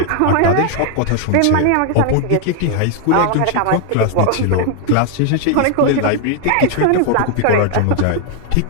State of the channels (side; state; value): both; different; correlation 0.00